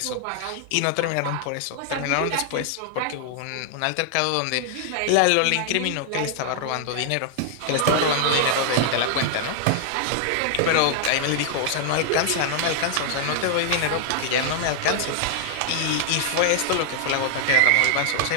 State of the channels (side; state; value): both; different; correlation 0.00